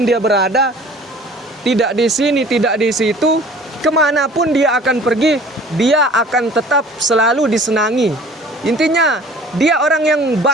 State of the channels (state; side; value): normal; both; correlation 0.48